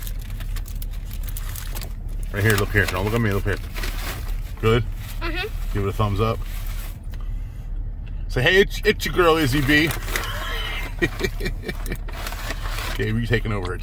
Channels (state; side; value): identical; both; correlation 1.00